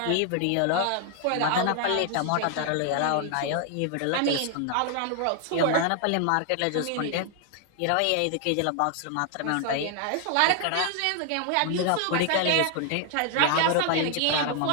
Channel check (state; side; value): different; both; correlation 0.00